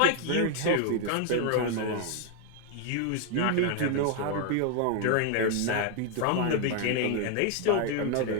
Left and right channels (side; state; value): both; different; correlation 0.00